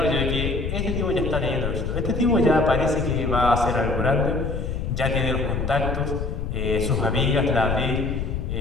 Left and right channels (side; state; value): left; noise; rumble, 3 dB below the sound